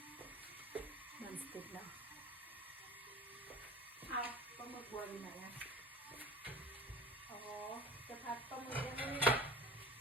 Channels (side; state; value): both; normal; correlation 0.40